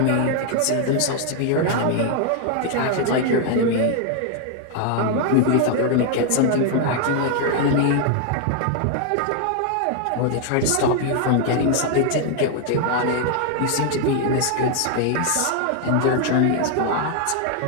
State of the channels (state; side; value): different; both; correlation 0.00